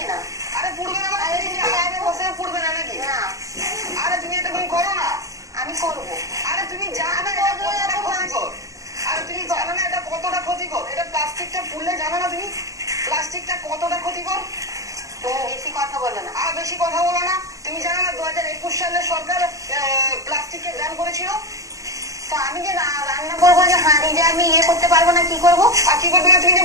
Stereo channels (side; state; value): left; late; 0.16 ms